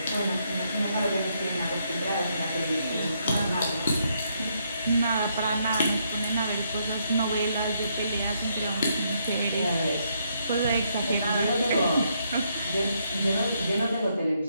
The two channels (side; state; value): both; inverted; correlation -0.75